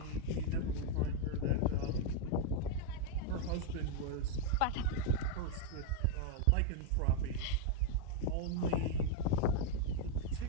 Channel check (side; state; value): both; different; correlation 0.00